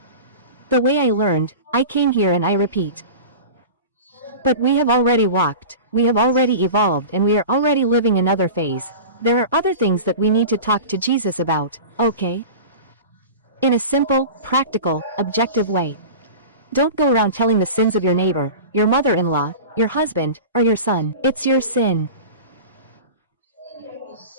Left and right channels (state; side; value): inverted; both; correlation -0.33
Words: The way I learned, I came here and I repeat. But we have already walked, we have already evolved, and we are already living another phase. There are other things that we need to talk to Jesus about, okay? In a simple, practical, objective way. Don't go around telling the sins of your neighbor, your mother-in-law, your husband, or your son. It's your sin.